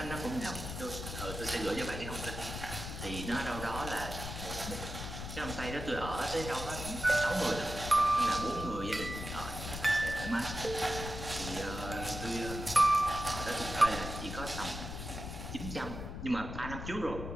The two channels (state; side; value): noise; left; rumble, 7 dB below the sound